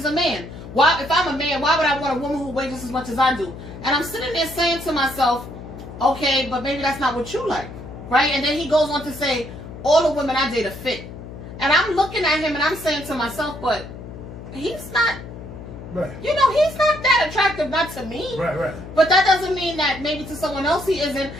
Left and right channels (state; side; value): noise; left; hum, 13 dB below the sound